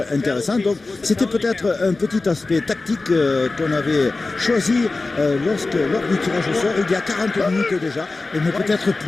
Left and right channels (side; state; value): right; quieter; 3.5 dB